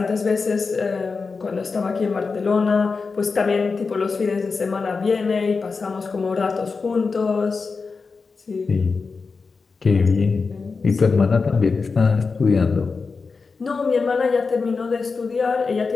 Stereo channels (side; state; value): right; quieter; 4.6 dB